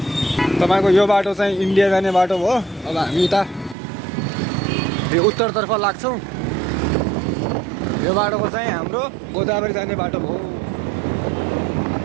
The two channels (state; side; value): drops out; left; at 3.8 s